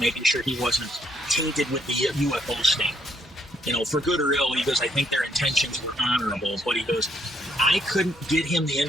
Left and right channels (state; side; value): normal; both; correlation 0.71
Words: sure he wasn't tainted with the UFO sting. You know, for good or ill, he goes, I think their intentions were honorable, but he goes, I couldn't get him the